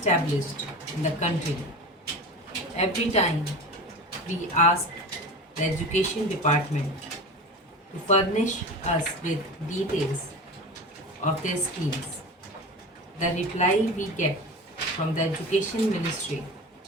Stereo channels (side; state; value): both; normal; correlation 0.31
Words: in the country. Every time we ask the Education Department to furnish us with details of their schemes, the reply we get from the Education Ministry